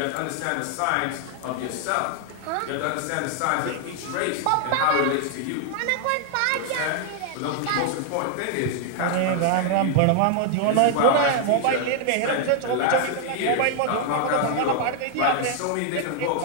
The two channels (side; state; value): both; different; correlation 0.00